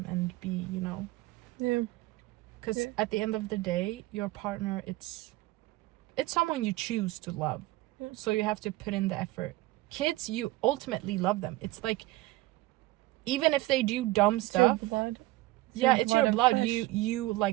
and be, you know. Yeah. Because at the end of the day, your partner, it's someone you choose to love. So you have to put in the effort. Kids, you ultimately love them. It's like, even if they do dumb stuff. It's your blood. It's your blood. You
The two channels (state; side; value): quieter; left; 19.0 dB